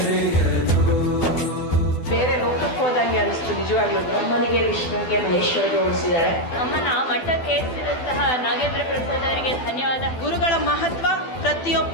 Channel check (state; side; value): late; right; 12 ms